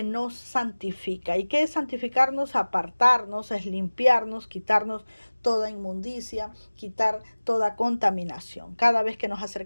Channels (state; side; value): inverted; both; correlation -1.00